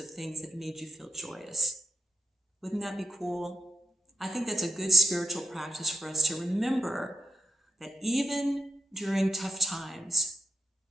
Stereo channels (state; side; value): normal; both; correlation 0.83